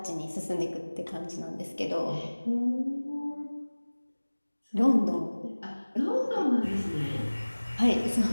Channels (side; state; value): both; inverted; correlation -1.00